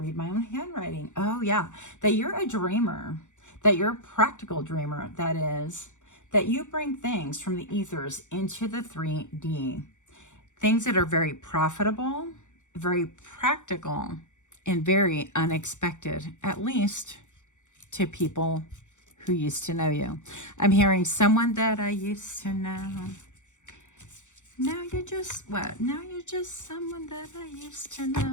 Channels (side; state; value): right; late; 0.85 ms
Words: my own handwriting. Oh yeah, that you're a dreamer, that you're a practical dreamer. That is, that you bring things from the ethers into the 3D. Things that are very profitable, very practical, and very unexpected, at least to people who used to know you. I'm hearing someone that I used to know. Now you're just, what? Now you're just someone that I used to